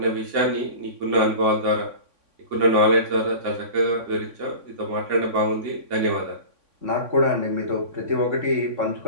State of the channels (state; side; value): late; left; 3.5 ms